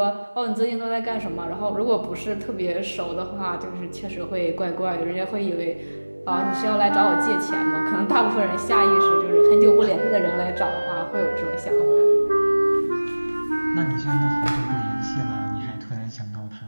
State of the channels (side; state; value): both; inverted; correlation -1.00